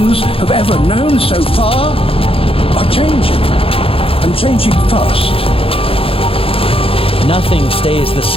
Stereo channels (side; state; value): right; late; 0.27 ms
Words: have ever known so far are changing, and changing fast. Nothing stays the